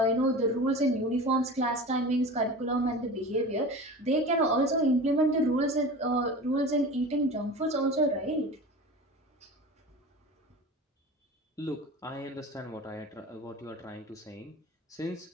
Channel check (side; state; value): both; normal; correlation 0.34